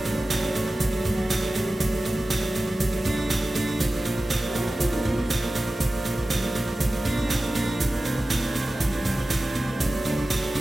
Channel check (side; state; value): both; normal; correlation 0.96